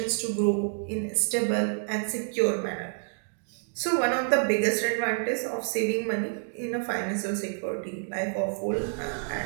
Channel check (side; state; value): left; silent; 59 dB below the other